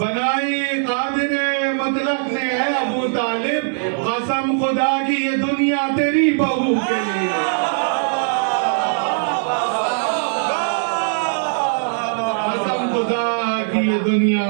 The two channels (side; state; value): left; silent; digital silence